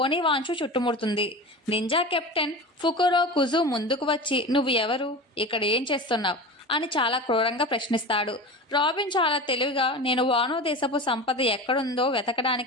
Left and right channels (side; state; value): both; normal; correlation 0.30